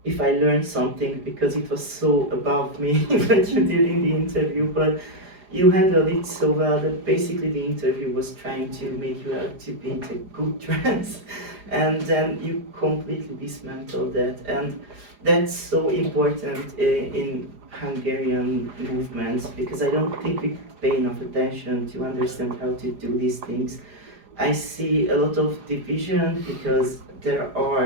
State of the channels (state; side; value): late; left; 4.9 ms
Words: if I learned something, because it was so above me what you did in the interview, but you handled it so well that basically the interview was trying to make you out to be a good trans, and then you completely dismantled that, and that's so important in Hungarian movements, because I don't think we pay enough attention to understand how to do these things. I see a lot of division because